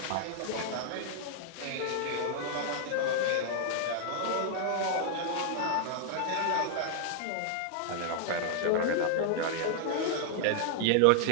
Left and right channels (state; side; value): different; both; correlation -0.01